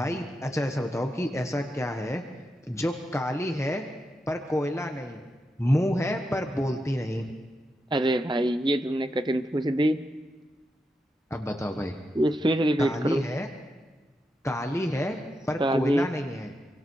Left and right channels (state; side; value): normal; both; correlation 0.86